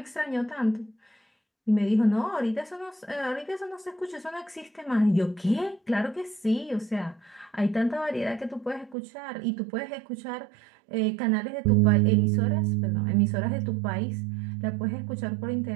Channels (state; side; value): drops out; left; at 9.0 s